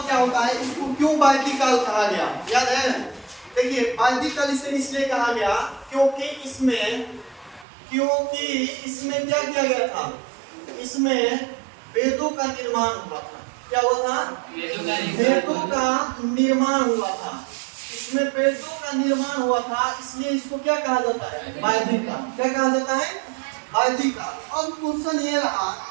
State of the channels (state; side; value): drops out; left; at 7.7 s